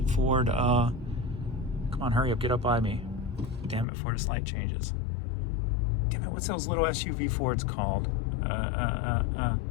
Ford, come on, hurry up, get up by me. Damn it, before this light changes. Damn it, what's those little SUV Fords called?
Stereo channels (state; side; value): drops out; right; at 3.9 s